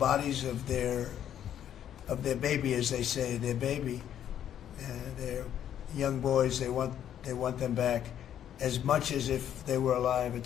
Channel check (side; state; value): right; quieter; 10.2 dB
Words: of their baby, as they say, their baby, their young boys. They want them back as much as if they were alive.